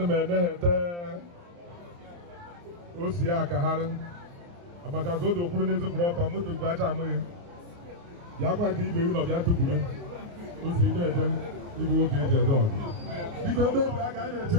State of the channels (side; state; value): left; late; 29 ms